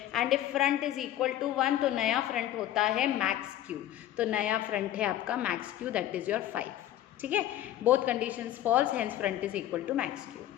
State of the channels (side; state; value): right; quieter; 12.7 dB